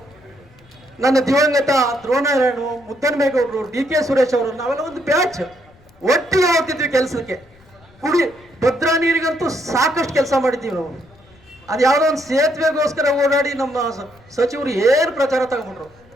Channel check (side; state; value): left; noise; rumble, 28 dB below the sound